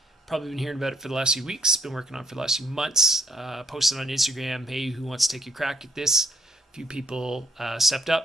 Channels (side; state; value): both; normal; correlation 0.71